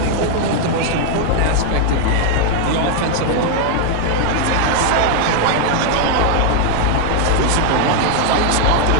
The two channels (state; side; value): different; both; correlation 0.00